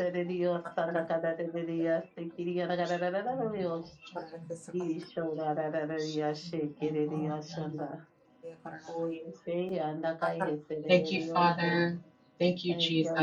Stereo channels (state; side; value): identical; both; correlation 1.00